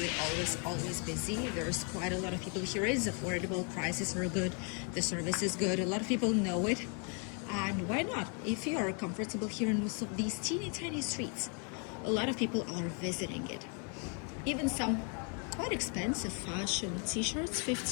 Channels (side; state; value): right; quieter; 38.4 dB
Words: always busy. There's quite a lot of people here. It's affordable, prices are good, the service is good. A lot of people know it. And why not? If you are comfortable here in most of these teeny tiny streets, a lot of people are visiting it. Even some quite expensive fashion t-shirts,